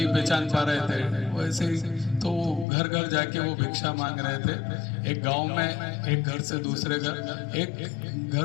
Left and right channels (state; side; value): drops out; right; at 2.7 s